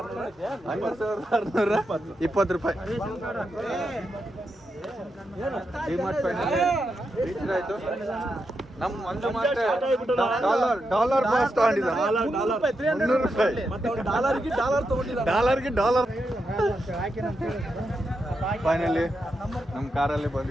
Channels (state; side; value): normal; both; correlation 0.85